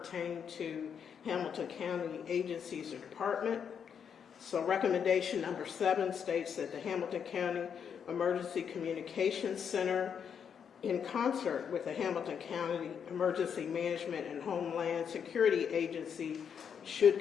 to Hamilton County agencies or department. So recommendation number 7 states that the Hamilton County Emergency Communications Center, in concert with the Hamilton County Emergency Management and Homeland Security Agency, should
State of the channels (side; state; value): right; quieter; 7.5 dB